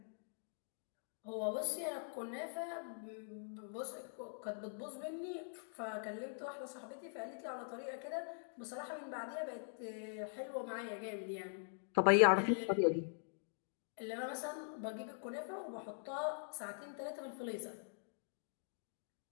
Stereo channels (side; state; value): right; silent; digital silence